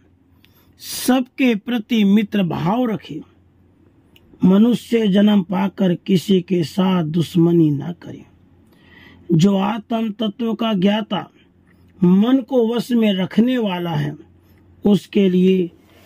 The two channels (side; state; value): both; identical; correlation 1.00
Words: सबके प्रति मित्र भाव रखे, मनुष्य जन्म पाकर किसी के साथ दुश्मनी न करे। जो आत्म तत्व का ज्ञाता, मन को वश में रखने वाला है, उसके लिए